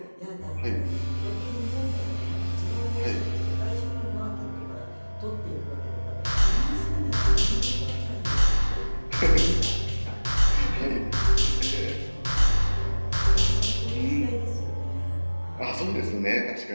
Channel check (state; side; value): inverted; both; correlation -1.00